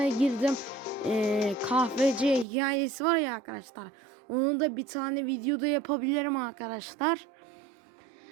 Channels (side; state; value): left; drops out; at 2.5 s